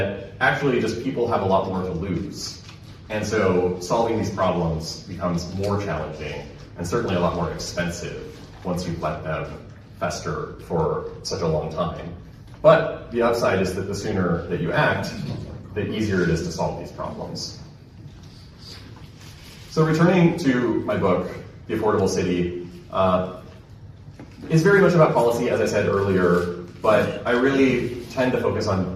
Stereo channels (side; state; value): both; identical; correlation 1.00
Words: actually just people have a lot more to lose. And so solving these problems becomes more challenging and certainly a lot more expensive once you've let them fester for such a long time. But the upside is that the sooner that you act, the easier it is to solve these problems. So returning to my book, The Affordable City, is very much about policy, as I said earlier, but I really tend to focus on